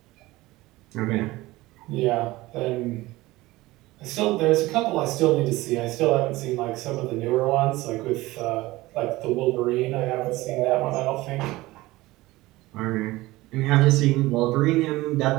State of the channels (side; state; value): left; quieter; 19.1 dB